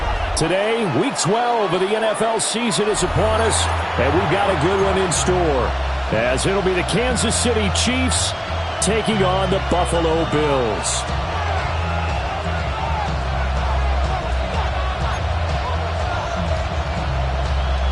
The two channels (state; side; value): identical; both; correlation 1.00